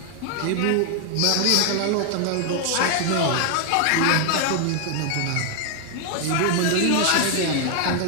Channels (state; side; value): different; both; correlation 0.00